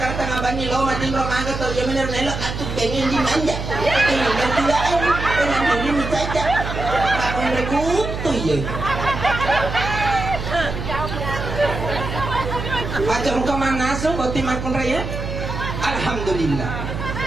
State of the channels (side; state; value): right; noise; hum, 5 dB below the sound